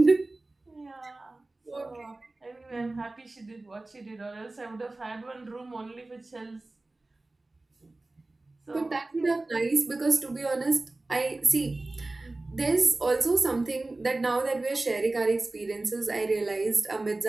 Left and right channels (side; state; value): left; quieter; 3.0 dB